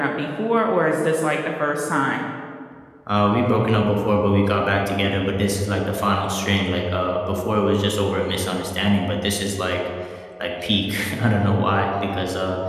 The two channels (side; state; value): both; identical; correlation 1.00